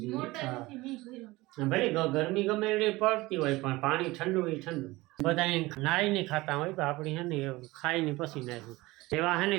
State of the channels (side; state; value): left; quieter; 20.3 dB